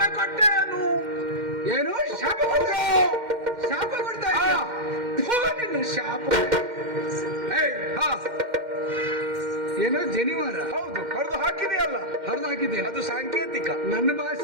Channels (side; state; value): left; late; 2.1 ms